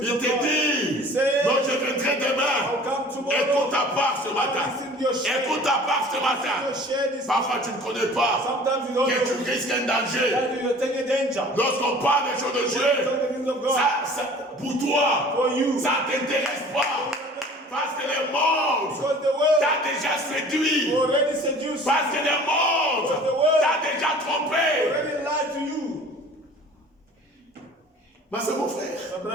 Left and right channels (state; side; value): normal; both; correlation 0.46